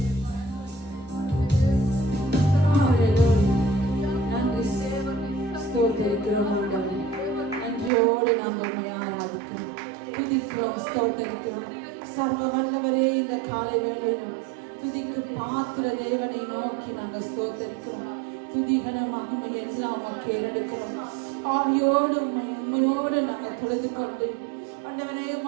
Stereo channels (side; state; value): left; drops out; at 7.9 s